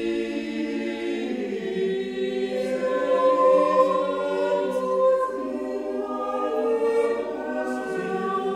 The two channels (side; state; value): both; identical; correlation 1.00